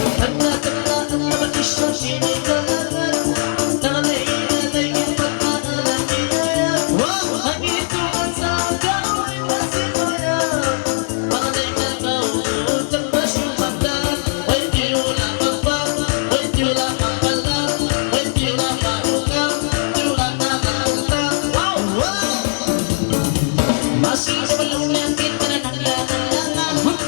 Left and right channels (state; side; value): silent; right; 65 dB below the other